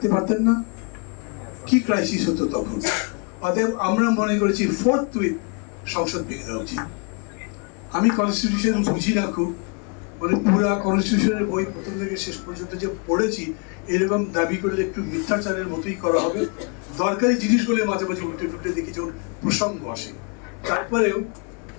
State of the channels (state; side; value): quieter; right; 35.6 dB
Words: পারতেন না? কি ক্রাইসিস হতো তখন। অতএব আমরা মনে করেছি ফোর্থউইথ সংসদ ভেঙে দেওয়া উচিত। আমি কনস্টিটিউশন বুঝি না খুব, মানে পুরা কনস্টিটিউশনের বই প্রথম থেকে শেষ পর্যন্ত যে পড়েছি, এরকম দাবি করলে একটু মিথ্যাচারের মতোই করা হবে। দরকারি জিনিসগুলো মাঝে মাঝে উল্টে টুটে দেখি যখন প্রসঙ্গ আসে। তারপরেও